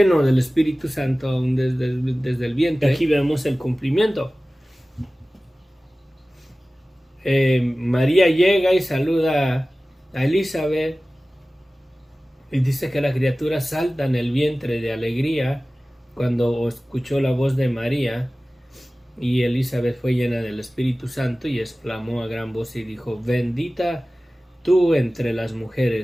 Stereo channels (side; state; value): both; normal; correlation 0.97